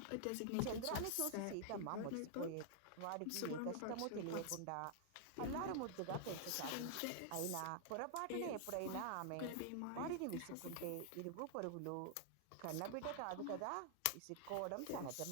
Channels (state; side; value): different; both; correlation -0.01